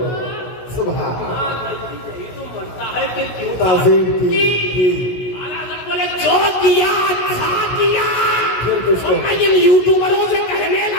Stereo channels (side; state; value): right; late; 16 ms